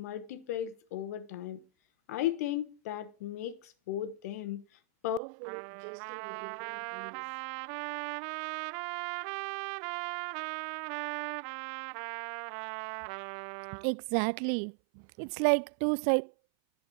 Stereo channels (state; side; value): drops out; left; at 5.2 s